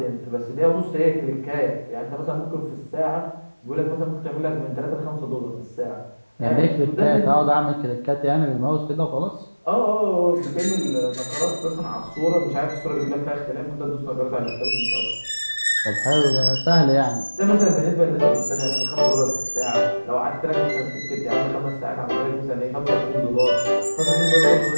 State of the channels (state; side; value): inverted; both; correlation -1.00